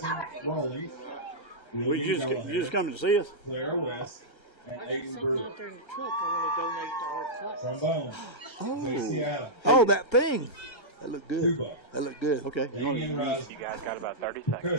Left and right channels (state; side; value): late; right; 1.3 ms